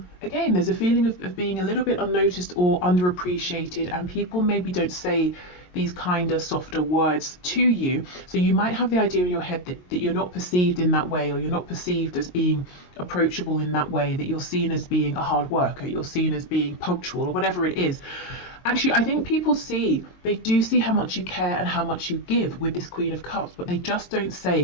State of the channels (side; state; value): right; late; 22 ms